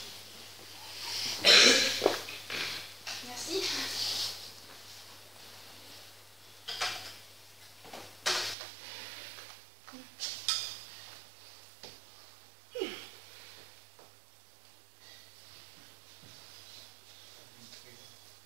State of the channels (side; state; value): left; drops out; at 8.6 s